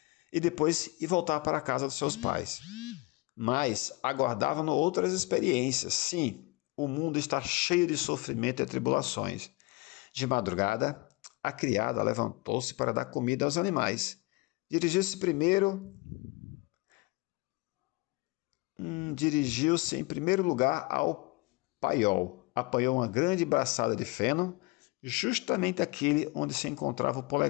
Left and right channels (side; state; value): right; quieter; 24.6 dB